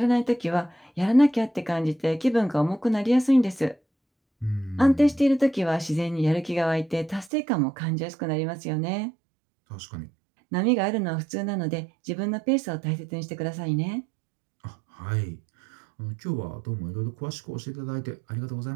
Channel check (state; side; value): drops out; left; at 7.3 s